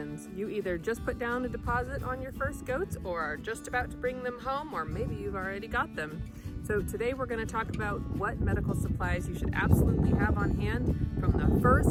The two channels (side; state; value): both; identical; correlation 1.00